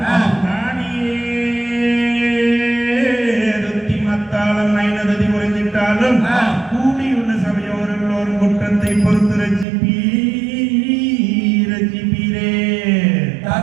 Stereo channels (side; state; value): left; drops out; at 9.7 s